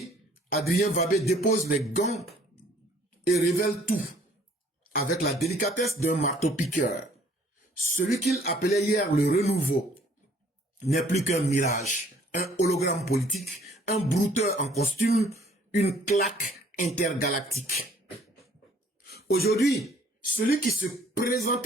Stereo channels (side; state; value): both; normal; correlation 0.59